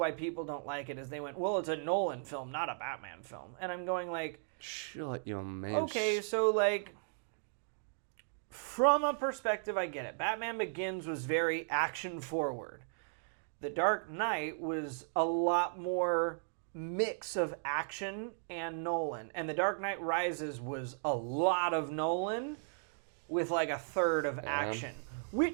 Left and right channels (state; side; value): silent; left; digital silence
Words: people don't like it, is they went, well, it's a Nolan film, not a Batman film. And I'm going like, shut your man. Okay, so like, from a perspective, I get it. Batman Begins was very action forward. The Dark Knight was a lot more mix of action and Nolan. And The Dark Knight Rises was a lot of Nolan with like a third of action,